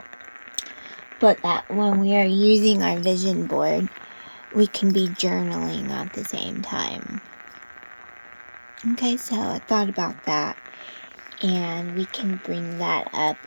But that when we are using our vision board, we can be journaling at the same time. Okay, so I thought about that, and we can bring that up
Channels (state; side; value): inverted; both; correlation -1.00